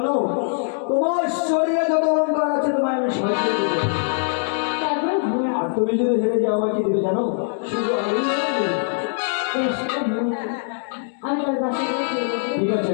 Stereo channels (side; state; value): right; silent; 64 dB below the other